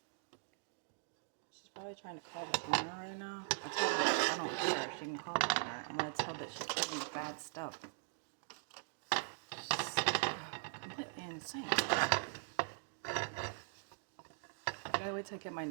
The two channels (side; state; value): left; silent; digital silence